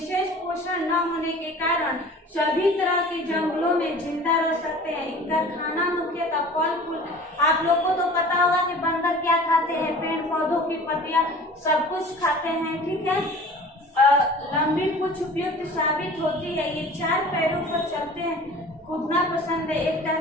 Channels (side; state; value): both; normal; correlation 0.43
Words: पोषण न होने के कारण सभी तरह के जंगलों में जिंदा रह सकते हैं। इनका खाना मुख्यतः फल फूल। आप लोग को तो पता होगा कि बंदर क्या खाते हैं, पेड़ पौधों की पत्तियां सब कुछ खाते हैं। ठीक है, लंबी पूंछ उपयुक्त साबित होती है। ये 4 पैरों पर चलते हैं। कूदना पसंद है। एक